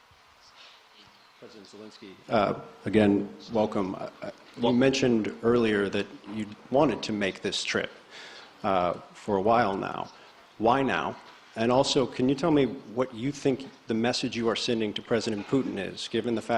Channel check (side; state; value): both; identical; correlation 1.00